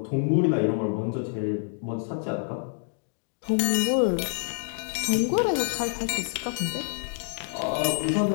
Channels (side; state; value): right; silent; digital silence